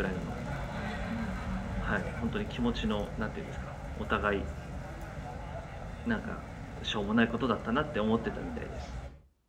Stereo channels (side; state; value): both; identical; correlation 1.00